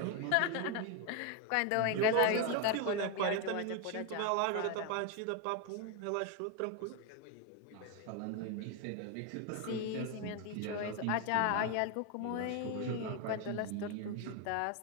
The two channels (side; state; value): both; different; correlation 0.01